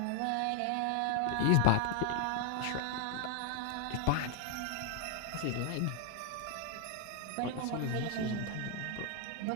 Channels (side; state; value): both; different; correlation 0.00